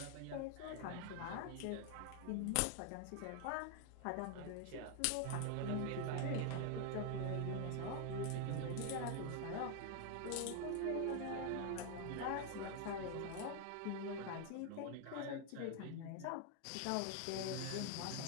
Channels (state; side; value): different; both; correlation 0.00